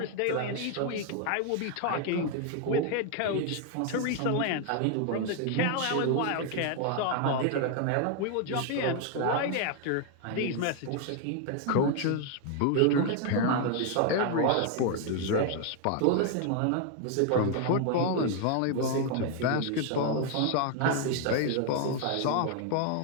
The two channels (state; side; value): different; both; correlation 0.00